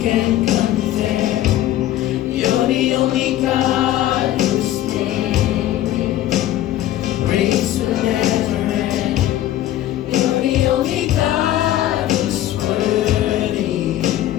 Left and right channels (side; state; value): right; quieter; 13.4 dB